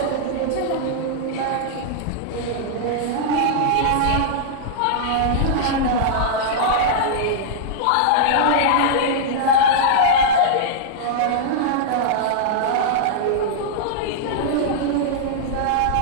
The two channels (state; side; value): different; both; correlation -0.02